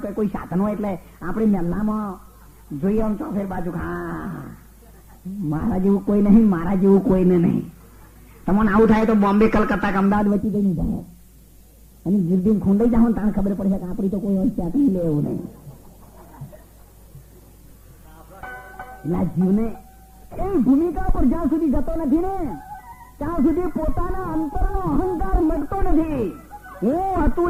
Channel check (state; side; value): identical; both; correlation 1.00